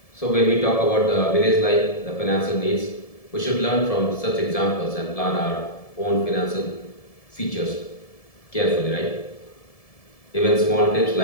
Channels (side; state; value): right; late; 1.7 ms